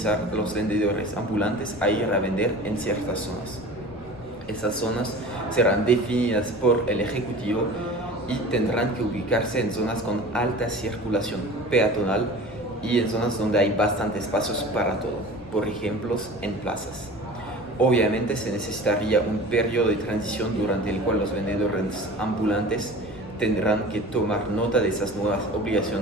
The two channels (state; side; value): noise; left; rumble, 24 dB below the sound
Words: a los vendedores ambulantes a ir a vender en ciertas zonas. Esas zonas serán definidas por el Ejecutivo y tendrán que ubicarse en zonas con alta circulación peatonal y en zonas donde hay bastantes espacios para todo, por ejemplo, en plazas. Obviamente se necesitaría un periodo de transición durante el cual los vendedores ambulantes tendrán que tomar nota de esas nuevas